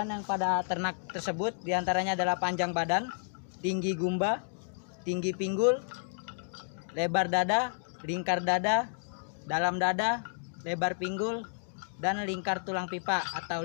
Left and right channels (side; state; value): right; silent; digital silence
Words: yang pada ternak tersebut, diantaranya adalah panjang badan, tinggi gumba, tinggi pinggul, lebar dada, lingkar dada, dalam dada, lebar pinggul, dan lingkar tulang pipa